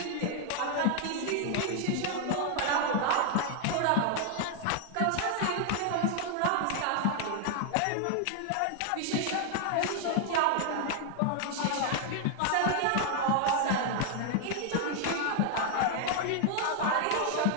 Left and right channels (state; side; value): different; both; correlation 0.00